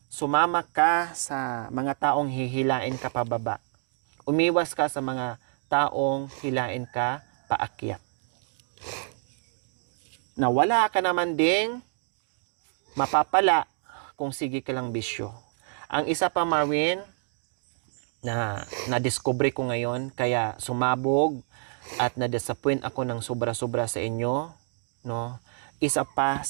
sumama ka sa mga taong hihilain ka pababa. Umiwas ka sa mga taong hilain ka paakyat. Na wala ka naman ding mapapala kung sige ka lang bisyo. Ang isa pa, Marwin, na na-discover ko ngayon, kaya sumabog at na-disappoint ako ng sobra-sobra sa inyo, no? Isa pa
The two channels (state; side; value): silent; left; digital silence